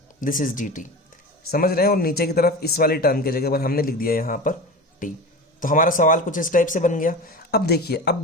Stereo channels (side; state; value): both; normal; correlation 0.29